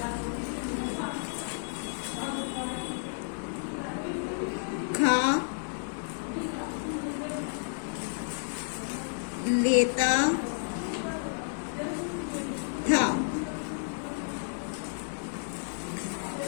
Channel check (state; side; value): silent; right; 57 dB below the other